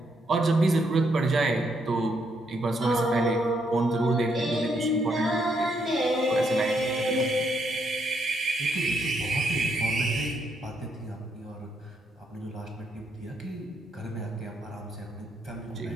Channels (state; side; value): normal; both; correlation 0.75